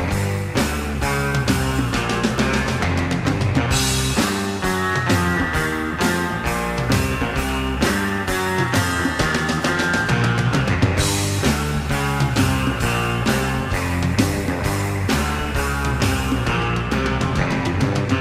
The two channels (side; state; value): both; identical; correlation 1.00